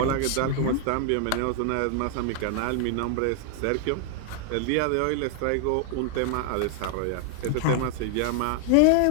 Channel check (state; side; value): different; both; correlation 0.00